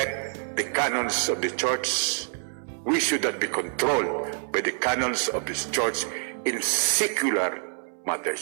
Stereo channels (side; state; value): left; silent; 60 dB below the other